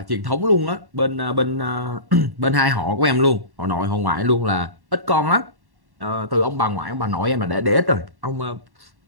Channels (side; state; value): left; late; 1.1 ms